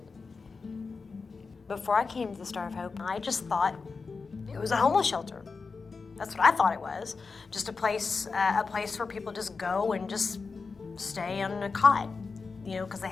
Before I came to the Star of Hope, I just thought it was a homeless shelter. That's what I thought it was. Just a place where people just go and just stay on a cot, because they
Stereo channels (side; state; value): right; quieter; 4.6 dB